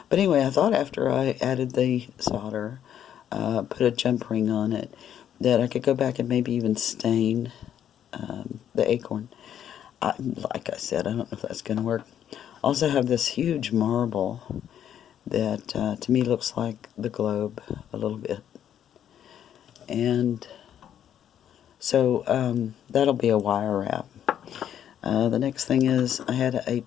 But anyway, I thought after I added the solder, put a jump ring on it, that I could go back and maybe even stain the acorn. Like I said, I don't know if that's going to work. Also have this huge marble that to me looks like the globe a little bit. And so that'll be a wire wrap. The next thing is I had a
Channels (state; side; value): quieter; right; 9.9 dB